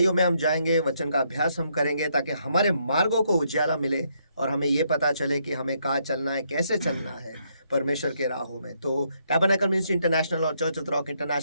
में हम जाएंगे, वचन का अभ्यास हम करेंगे ताकि हमारे मार्गों को उजियाला मिले और हमें ये पता चले कि हमें कहाँ चलना है, कैसे चलना है परमेश्वर के राहों में। तो टैबरनेकल मिनिस्ट्री इंटरनेशनल और चर्च ऑफ रॉक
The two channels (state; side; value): inverted; both; correlation -0.74